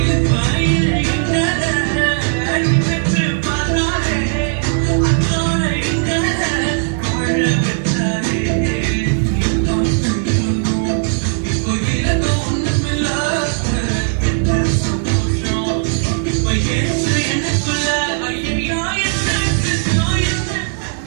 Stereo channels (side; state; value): left; silent; digital silence